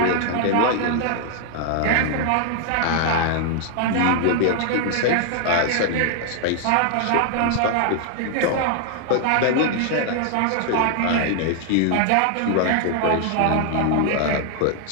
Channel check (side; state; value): both; different; correlation 0.00